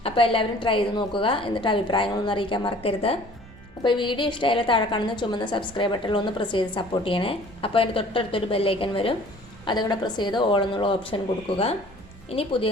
അപ്പോൾ എല്ലാവരും ട്രൈ ചെയ്ത് നോക്കുക. എന്നിട്ട് അഭിപ്രായങ്ങളൊന്നും അറിയിക്കാൻ മറക്കരുത്. അപ്പോൾ ഈ വീഡിയോ ഇഷ്ടമായാലും താഴെ കാണുന്ന ചുമന്ന സബ്സ്ക്രൈബ് ബട്ടണിൽ ഒന്ന് പ്രസ് ചെയ്ത് സപ്പോർട്ട് ചെയ്യണേ. അപ്പോൾ അതിൻ്റെ തൊട്ടടുത്തൊരു ബെല്ലൈക്കൻ വരും, അതുകൂടെ പ്രസ് ചെയ്ത് ഓൾ എന്നുള്ള ഓപ്ഷൻ കൊടുക്കുക. ഇനി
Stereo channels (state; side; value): normal; both; correlation 0.51